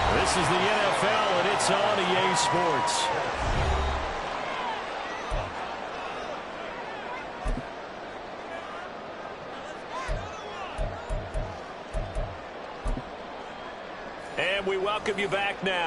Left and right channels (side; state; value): both; identical; correlation 1.00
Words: This is the NFL, and it's on EA Sports. And we welcome you back